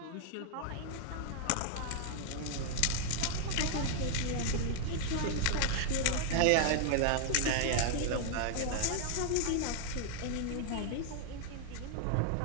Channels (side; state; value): both; different; correlation 0.00